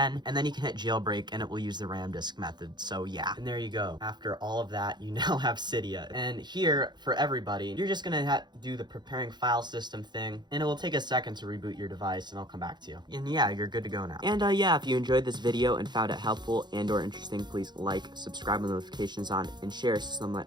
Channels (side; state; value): left; late; 0.21 ms